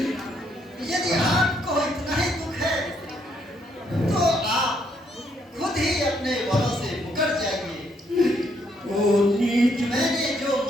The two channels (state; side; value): normal; both; correlation 0.72